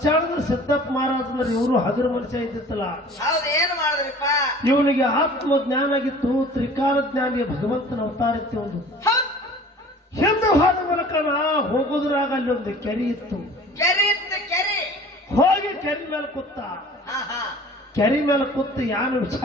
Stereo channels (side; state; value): both; normal; correlation 0.46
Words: ಸಿದ್ದಪ್ಪ ಮಹಾರಾಜಂದ್ರೆ ಇವರು ಹಗರ ಮನುಷ್ಯ ಇದ್ದಿತ್ತಲ್ಲ, ಹೌದು. ಏನ್ ಮಾಡಿದ್ರಿಪ್ಪ? ಇವನಿಗೆ ಆತ್ಮ ಜ್ಞಾನ ಆಗಿತ್ತು, ತ್ರಿಕಾಲ ಜ್ಞಾನಿಗೆ ಭಗವಂತನ ಅವತಾರ ಇತ್ತು. ಒಂದು ಹಿಂದೆ ಹೋದ ಮೂಲಕ ಹೋಗುದ್ರಾಗ ಅಲ್ಲಿ ಒಂದು ಕೆರೆ ಇತ್ತು. ಕೆರೆ ಇತ್ತು, ಕೆರೆ. ಹೋಗಿ ಕೆರೆ ಮೇಲೆ ಕೂತ. ಕೆರೆ ಮೇಲೆ ಕೂತು ಯಾನು